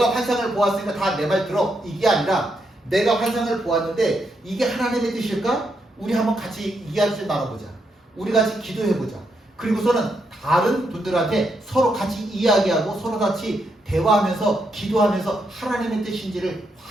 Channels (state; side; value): normal; both; correlation 0.80